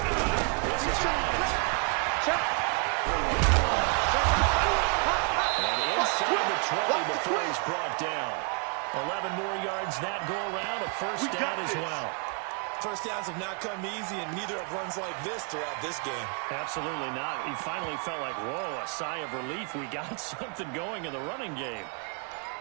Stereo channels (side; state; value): left; quieter; 36.1 dB